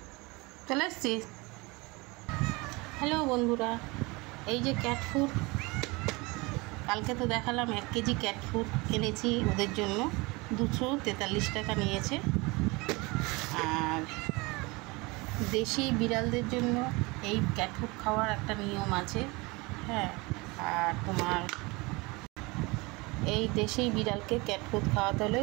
চলে এসছিস। হ্যালো বন্ধুরা, এই যে ক্যাট ফুড, কালকে তো দেখালাম 1 কেজি ক্যাট ফুড এনেছি ওদের জন্য। 243 টাকা নিয়েছে। আর দেশি বিড়ালদের জন্য এই ক্যাট ফুড খাওয়ার একটা নিয়ম আছে। হ্যাঁ, আর তোমার এই দেশি বিড়ালকে ক্যাট ফুড খাওয়াতে হলে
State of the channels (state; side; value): quieter; left; 25.0 dB